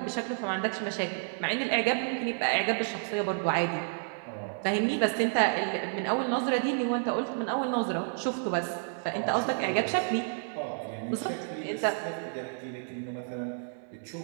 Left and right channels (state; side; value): silent; left; 58 dB below the other